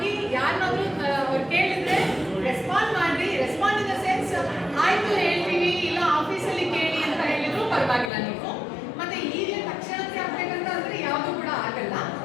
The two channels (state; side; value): drops out; right; at 8.1 s